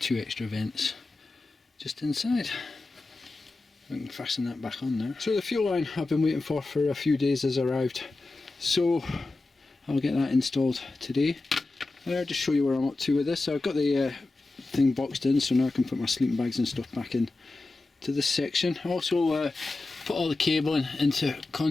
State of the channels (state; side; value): quieter; right; 3.3 dB